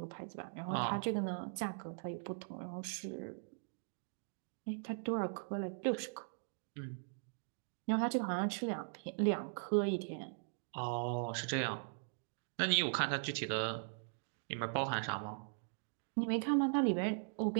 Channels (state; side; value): silent; left; digital silence